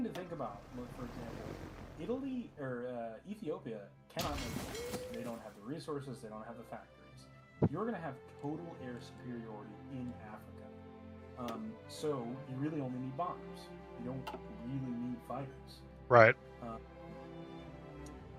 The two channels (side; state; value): both; identical; correlation 1.00